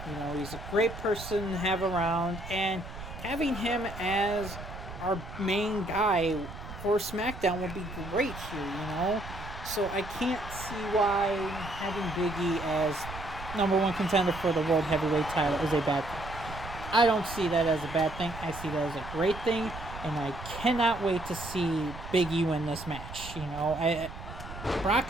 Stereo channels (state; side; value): noise; right; rumble, 12 dB below the sound